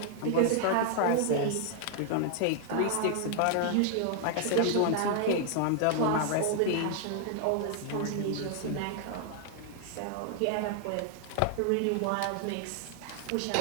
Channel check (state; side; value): different; both; correlation 0.00